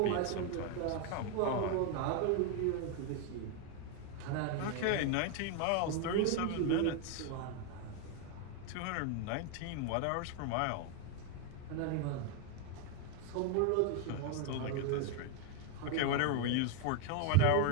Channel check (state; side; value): different; both; correlation 0.01